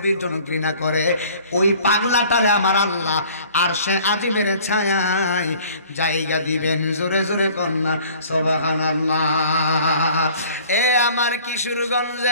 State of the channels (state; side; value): inverted; both; correlation -0.51